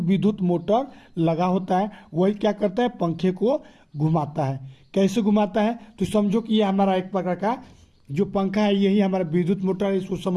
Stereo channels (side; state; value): both; identical; correlation 1.00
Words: मोटर लगा होता है, वही क्या करता है, पंखे को घुमाता है। कैसे घुमाता है, तो समझो कि ये हमारा एक प्रकार का जो पंखा है, यही हमारा विद्युत मोटर है। इसको